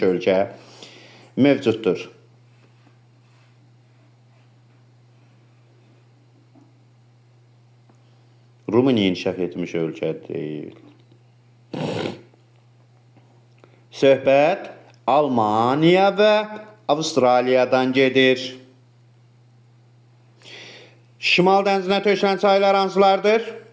ölkə mövcuddur? Rumıniya inkişaf etmiş ölkə deyil. Söhbət Almaniya və Avustraliyadan gedir. Şimal dənizinə tökülən çaylar hansılardır?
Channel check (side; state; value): both; identical; correlation 1.00